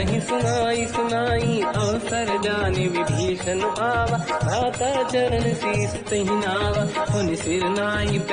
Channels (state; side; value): identical; both; correlation 1.00